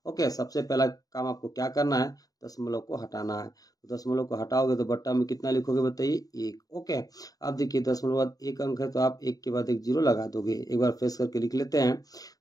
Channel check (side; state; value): right; late; 0.18 ms